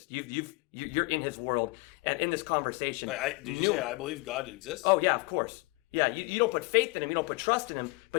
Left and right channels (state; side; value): quieter; right; 25.5 dB